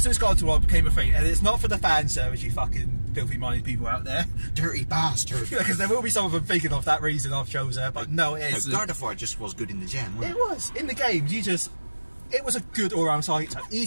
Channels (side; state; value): both; inverted; correlation -1.00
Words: soon as Gardevoir became a thing, and it's not for the fan service, you fucking filthy-minded people out there. Dirty bastard. Because there will be some of them thinking of that reason I've chose her, but no, it isn't. No, Gardevoir just was good in the gen, wasn't It was. In the games, it was a good all-round Psychic type.